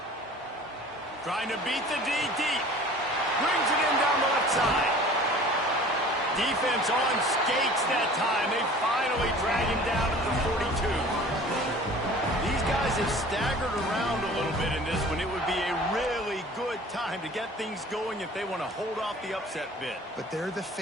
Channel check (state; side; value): normal; both; correlation 0.45